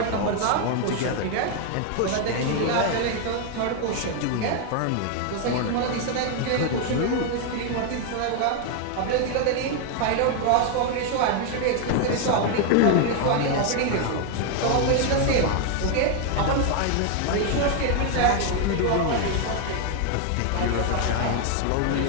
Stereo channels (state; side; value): different; both; correlation 0.01